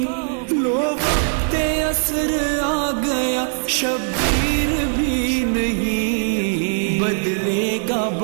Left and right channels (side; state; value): left; silent; digital silence